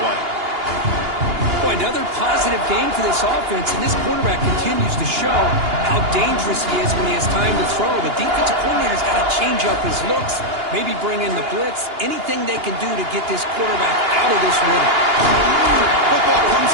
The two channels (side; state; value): left; late; 2.8 ms